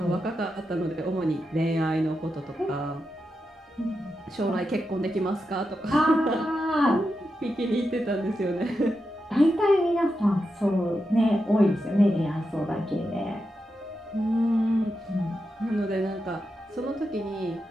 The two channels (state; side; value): normal; both; correlation 0.88